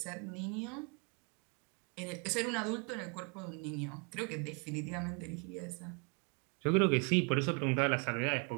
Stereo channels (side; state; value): left; quieter; 35.2 dB